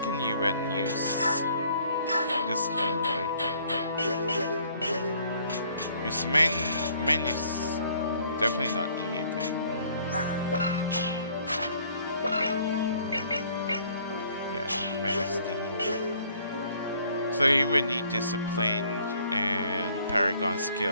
can you use this heal, right? His main is definitely not E thing. Yeah, main is D. So you would need Discipline and Paragon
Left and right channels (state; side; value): inverted; both; correlation -0.60